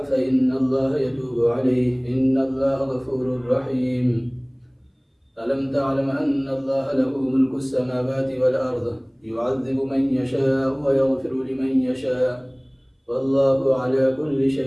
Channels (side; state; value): both; identical; correlation 1.00